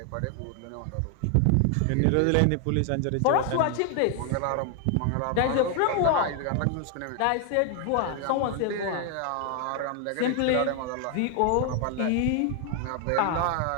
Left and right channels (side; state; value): both; different; correlation 0.00